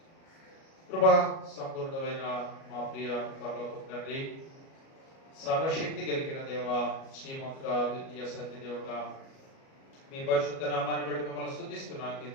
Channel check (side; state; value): right; late; 37 ms